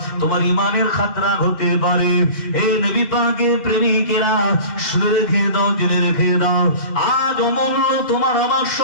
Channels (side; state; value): right; late; 2.5 ms